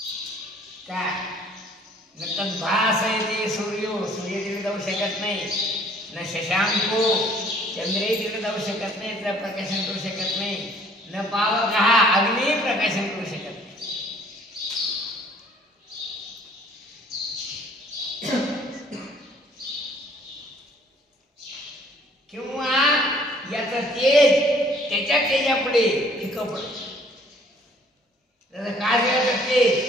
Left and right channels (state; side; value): normal; both; correlation 0.57